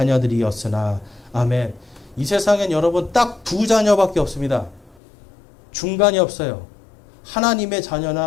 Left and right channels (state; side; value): drops out; right; at 5.0 s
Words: 아멘. 이 세상엔 여러분 딱 두 자녀밖에 없습니다. 중간이 없어요. 하나님의